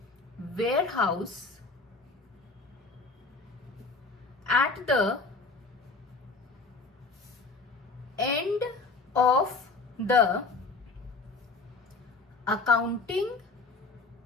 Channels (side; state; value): right; quieter; 3.9 dB